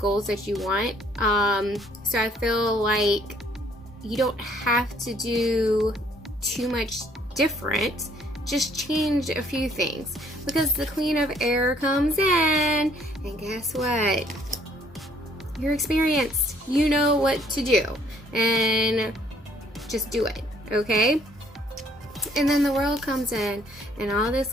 that you want. So I feel like you don't have to do too much different. Just change a few things, because the Queen of Air comes in, and guess what? You're experienced. You know what to do, and just do it, okay? And then the World comes in, and all this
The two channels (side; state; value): both; normal; correlation 0.63